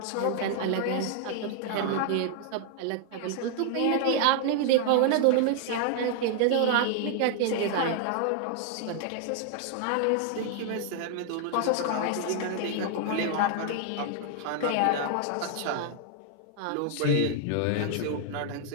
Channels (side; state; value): both; different; correlation 0.00